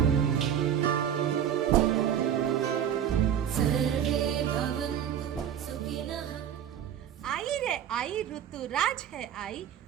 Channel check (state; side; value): quieter; left; 9.4 dB